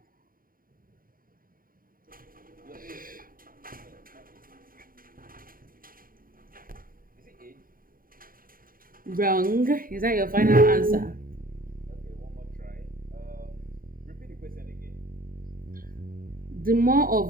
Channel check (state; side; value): late; left; 0.41 ms